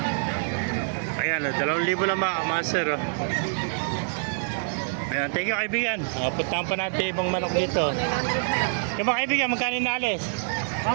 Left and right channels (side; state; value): left; silent; digital silence